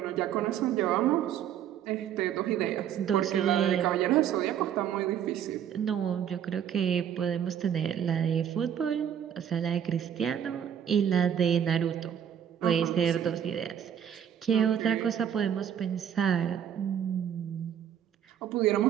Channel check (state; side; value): quieter; left; 9.3 dB